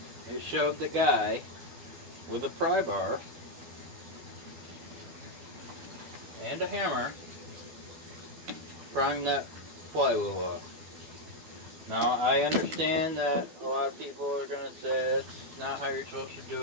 It showed the guy with a pry bar and a hammer prying that flywheel off. Now, I understand that a lot of people are going to say it's not how you're supposed to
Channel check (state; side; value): late; left; 12 ms